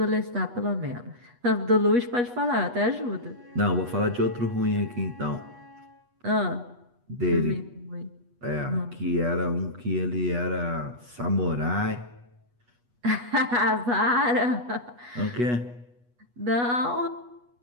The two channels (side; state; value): left; late; 8.3 ms